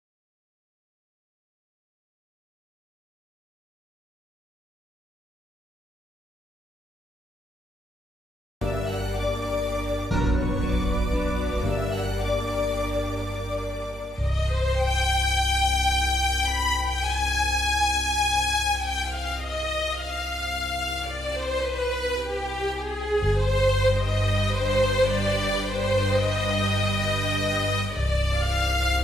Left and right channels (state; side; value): normal; both; correlation 0.76